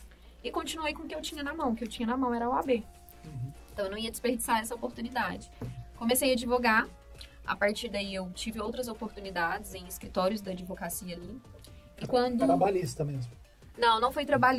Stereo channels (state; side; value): identical; both; correlation 1.00